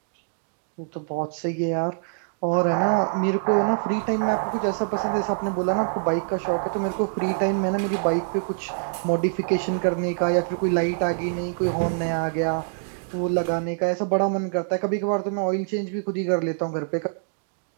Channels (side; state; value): left; silent; digital silence